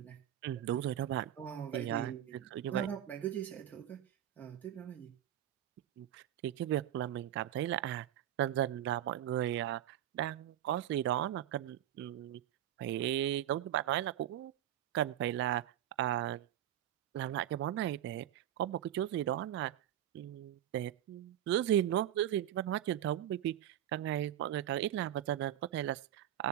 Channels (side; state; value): left; quieter; 11.7 dB